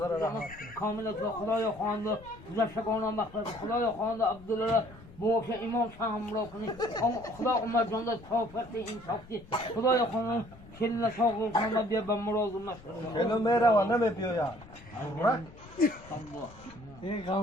کامل خدای خوانده زشگانم مخلص خدای خوانده عبدالله موش امام شاه همراه کنی خدا عمر جان داد کافرت این ساختی خدای خوانده کل ساقل کنم بیا به مراد مشهد کلو میروه نمیپیوید این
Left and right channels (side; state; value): left; noise; rumble, 20 dB below the sound